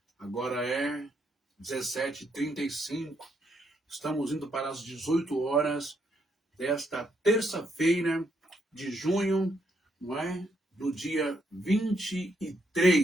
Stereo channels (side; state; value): both; normal; correlation 0.76